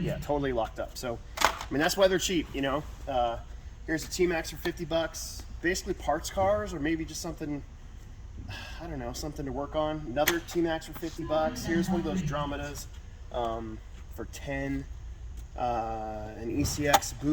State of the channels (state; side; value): identical; both; correlation 1.00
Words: totally locked up. So, I mean, that's why they're cheap, you know. Here's a T-Max for $50. Basically parts cars, or maybe just something, I don't know, something to work on. Another T-Max for $50. Here's one of those Dromedas for $10. An ECX